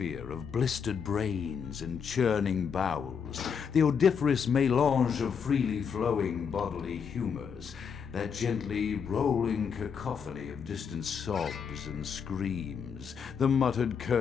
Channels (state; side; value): quieter; right; 6.7 dB